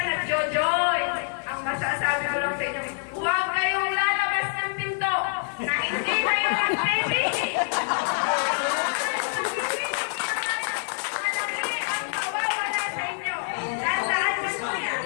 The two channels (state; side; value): silent; right; digital silence